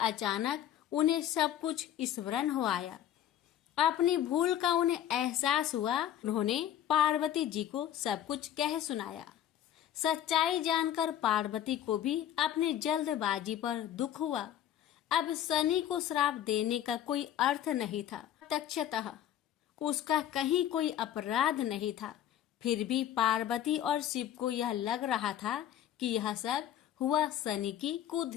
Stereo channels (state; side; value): quieter; right; 11.0 dB